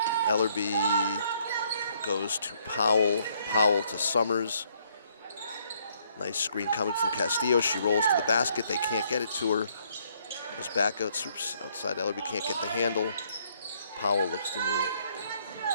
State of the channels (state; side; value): inverted; both; correlation -0.68